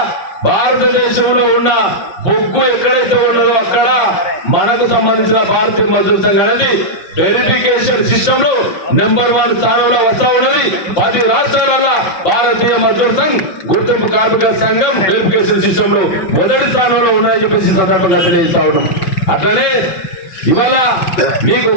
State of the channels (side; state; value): right; late; 5.6 ms